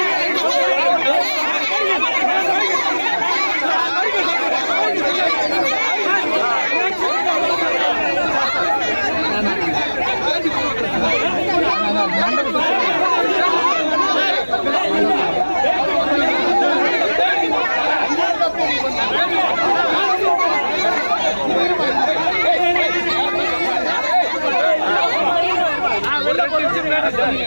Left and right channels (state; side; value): inverted; both; correlation -1.00